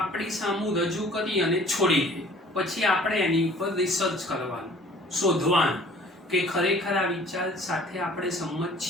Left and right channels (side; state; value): both; normal; correlation 0.52